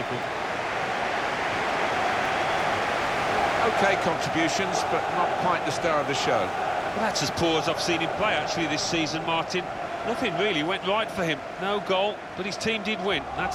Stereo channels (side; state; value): both; identical; correlation 1.00